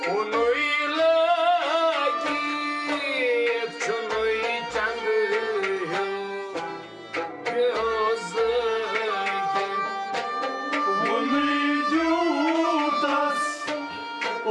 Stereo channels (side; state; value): both; identical; correlation 1.00